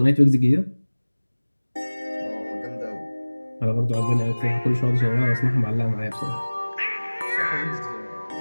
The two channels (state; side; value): inverted; both; correlation -1.00